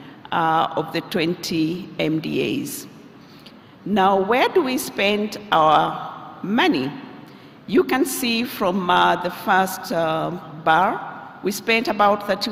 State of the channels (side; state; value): both; identical; correlation 1.00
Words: of the 20 MDAs. Now, where do we spend our money? You can see from the first bar, we spent about